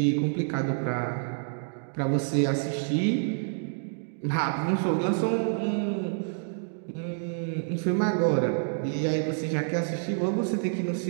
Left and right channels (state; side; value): silent; left; digital silence